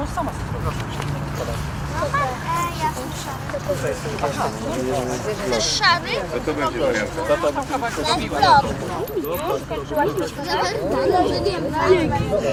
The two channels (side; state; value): both; identical; correlation 1.00